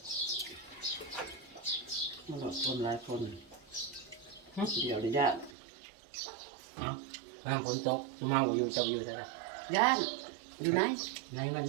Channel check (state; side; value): drops out; left; at 5.5 s